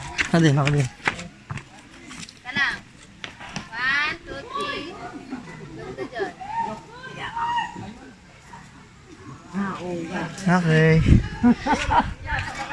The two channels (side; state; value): both; identical; correlation 1.00